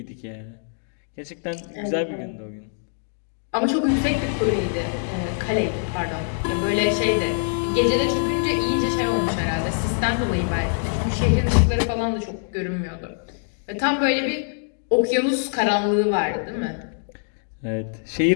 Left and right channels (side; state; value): right; silent; digital silence